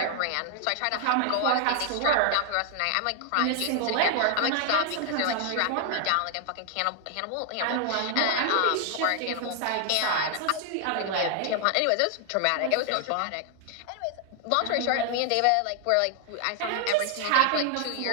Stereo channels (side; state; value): both; different; correlation 0.00